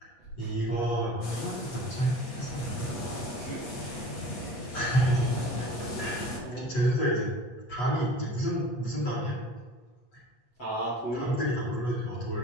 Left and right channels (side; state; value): right; late; 8.5 ms